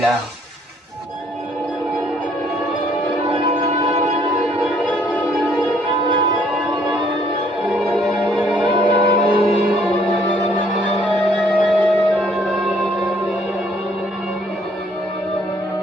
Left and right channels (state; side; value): normal; both; correlation 0.64